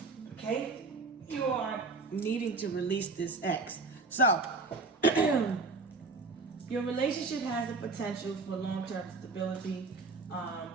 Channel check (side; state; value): left; quieter; 3.8 dB